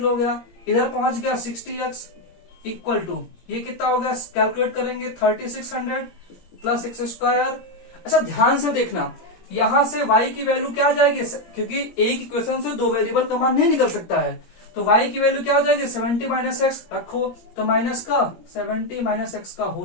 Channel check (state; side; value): late; right; 17 ms